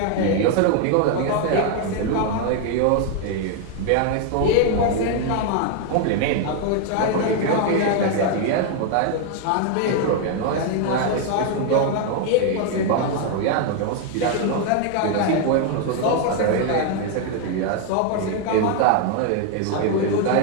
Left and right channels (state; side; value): different; both; correlation 0.00